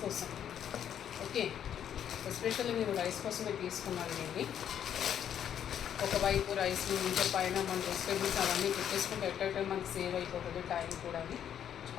కోసం. ఓకే, ఎస్పెషల్లీ నేను రైస్ కోసమే తీసుకున్నాను. నేను ఒకవైపు రైస్ ఇంకా పైన మన వెజిటేబుల్స్ అవన్నీ పెట్టేసుకుంటే ఎట్ట మనకి సేవ్ అయిపోతుంది టైం కూడా. అది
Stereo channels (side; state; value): right; quieter; 9.4 dB